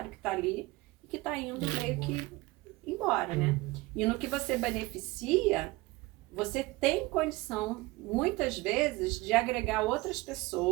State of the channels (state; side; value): quieter; left; 21.4 dB